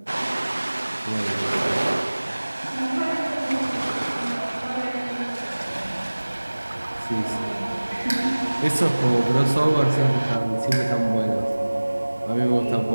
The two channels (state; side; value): inverted; both; correlation -1.00